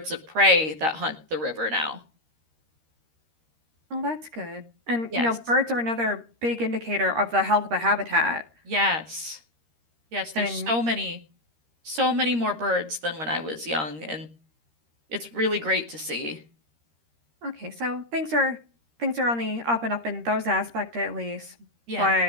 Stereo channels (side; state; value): left; late; 13 ms